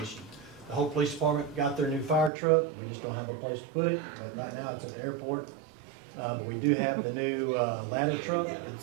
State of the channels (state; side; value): drops out; left; at 2.3 s